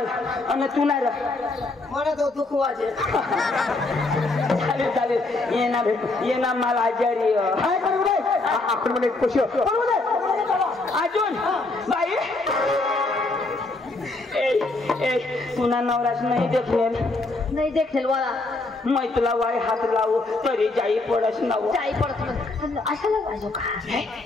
आणि तू नाही मला तो दुख वाजे चालेल चालेल ये ना माल आजारी काय करू रे आपण म्हणे खुशी अजून बाई ए तुना नवराच नाही देखलेल नाही देखील वाला मैं तुला वाय हात लावू तरी जाई पडस नव जाई पडत अशाला पाहिजे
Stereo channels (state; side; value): quieter; right; 3.2 dB